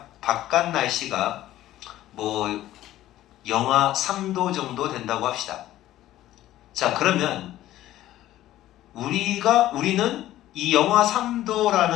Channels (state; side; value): quieter; right; 14.2 dB